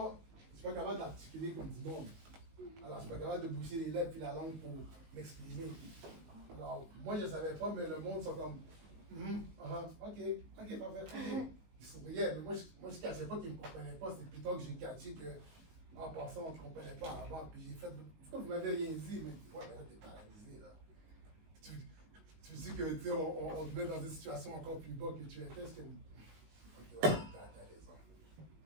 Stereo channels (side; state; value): left; late; 19 ms